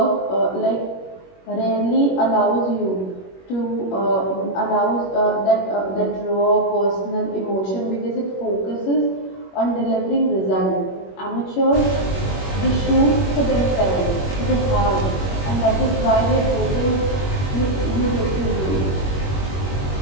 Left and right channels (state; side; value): late; right; 21 ms